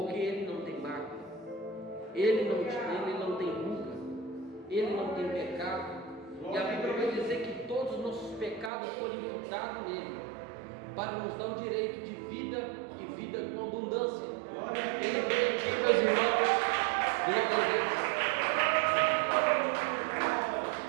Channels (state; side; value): drops out; left; at 8.7 s